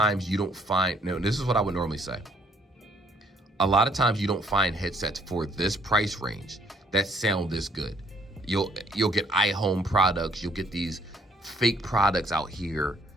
you don't find, no, this is what I would normally say. A lot of times you don't find headsets for this price range that sound this good. You'll get iHome products, you'll get these fake products out here,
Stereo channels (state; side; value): normal; both; correlation 0.64